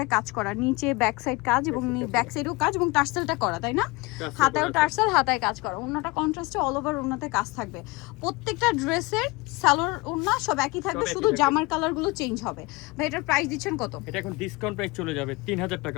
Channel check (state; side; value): quieter; right; 24.1 dB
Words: কাজ করা, নিচে ব্যাক সাইড কাজ এবং ব্যাক সাইডেও কাজ এবং টার্সেলটা করা, তাই না? হাতায়ও টার্সেল, হাতায় কাজ করা। ওড়নাটা কন্ট্রাস্টে অল ওভার ওড়নাতে কাজ থাকবে। প্রত্যেকটা ড্রেসের সালোয়ার ওড়না সব একই থাকবে, শুধু জামার কালারগুলো চেঞ্জ হবে। ভাই এটার প্রাইস দিচ্ছেন কত? এটা এখন ডিসকাউন্ট প্রাইস চলে যাবে 3000